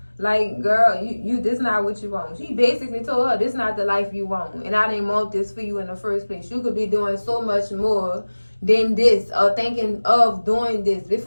Like, girl, you this not what you want. She basically told her, this not the life you want. And I didn't want this for you in the first place. You could be doing so much more than this, or thinking of doing this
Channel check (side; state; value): both; inverted; correlation -1.00